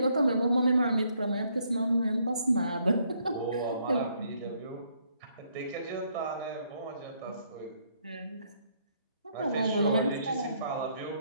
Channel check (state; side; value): inverted; both; correlation -0.70